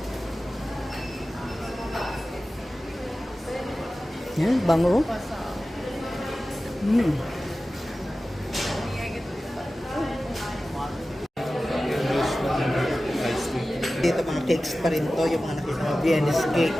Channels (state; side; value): normal; both; correlation 0.95